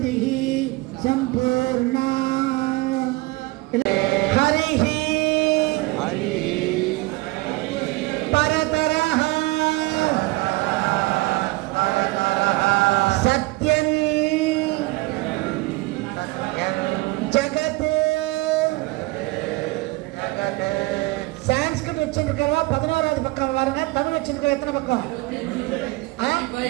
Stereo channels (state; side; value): quieter; left; 22.1 dB